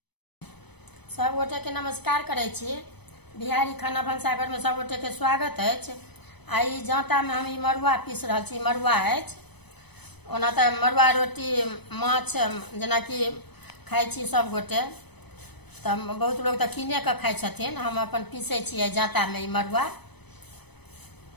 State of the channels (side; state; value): right; late; 0.98 ms